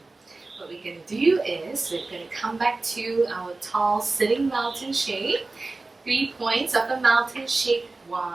What we're going to do is we're going to come back to our tall sitting mountain shape. 3 points of the mountain shape. 1,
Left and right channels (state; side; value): quieter; left; 3.4 dB